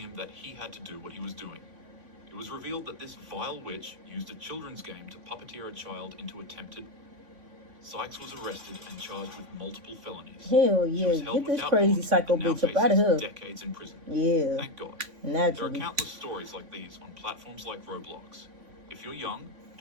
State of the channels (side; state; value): left; late; 3.5 ms